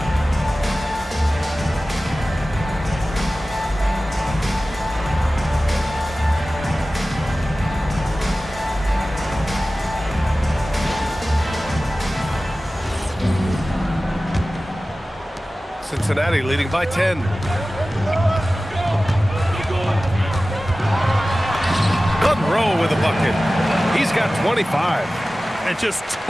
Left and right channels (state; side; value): normal; both; correlation 0.96